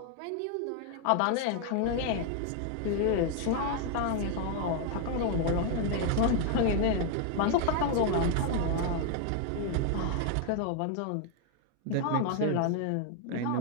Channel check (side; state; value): both; different; correlation 0.00